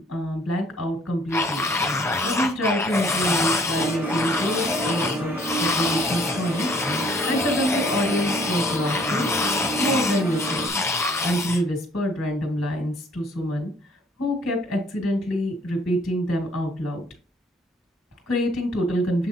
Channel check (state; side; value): normal; both; correlation 0.60